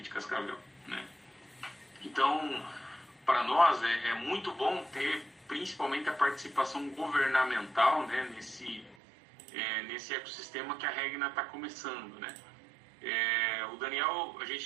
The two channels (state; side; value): drops out; left; at 9.0 s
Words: de Cascavel, né? Então, para nós é muito bom ter principalmente a participação governamental, né, nesse ecossistema que a Regna está começando, né? O Daniel, a